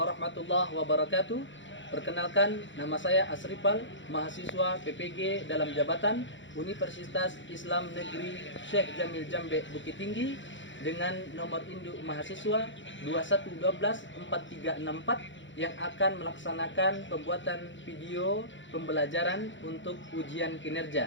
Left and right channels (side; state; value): right; late; 0.54 ms